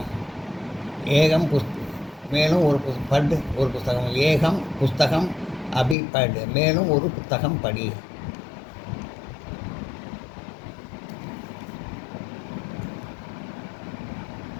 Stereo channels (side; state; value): right; drops out; at 6.0 s